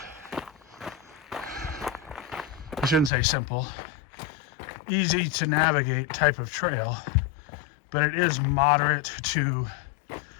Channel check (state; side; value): drops out; right; at 3.1 s